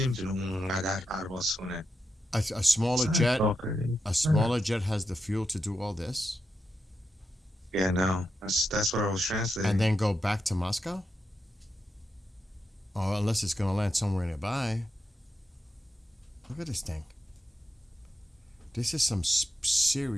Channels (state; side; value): normal; both; correlation 0.86